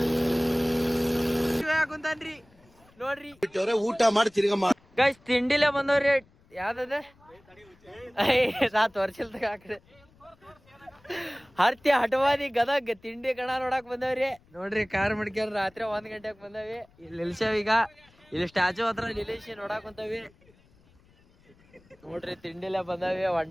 ಕುಂತಾನ್ರಿ ನೋಡ್ರಿ. ಊಟ ಮಾಡಿ ತಿರ್ಗ ಗೈಸ್ ತಿಂಡಿಲೇ ಬಂದವ್ರಿ. ಯಾವ್ದದ ವರ್ಷಲ್ದಾಗ ಹಾಕ್ರಿ ಹರ್ತಿ ಹಟವಾದಿ ಗದಗ್ ತಿಂಡಿ ಕಣ ನೋಡಕ್ ಬಂದವ್ರಿ ನೋಡ್ರಿ. ಕಾರ್ ಮಡ್ಕ್ಯಾರ ರಾತ್ರಿ 1 ಗಂಟೆಗೆ ಬಂದವಿ. ಇಲ್ಲಿ ನಿಲ್ಸೇವ್ ಈಗ. ಇಲ್ಲಿ ಸ್ಟ್ಯಾಚು ಹತ್ರ ನಿಲ್ಲಿಸಿ ನೋಡಕ್ ಕುಂತವಿ ನೋಡ್ರಿ. ತಿಂಡಿಲೇ ಬಂದವಿ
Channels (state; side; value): noise; left; rumble, 30 dB below the sound